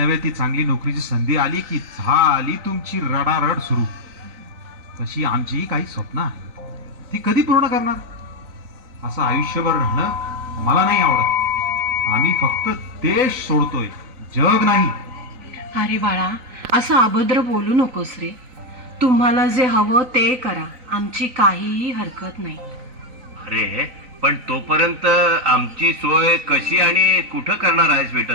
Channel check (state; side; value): late; left; 3.9 ms